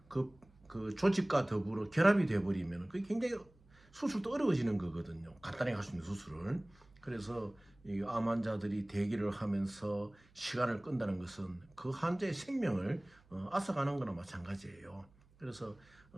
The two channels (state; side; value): noise; right; hum, 29 dB below the sound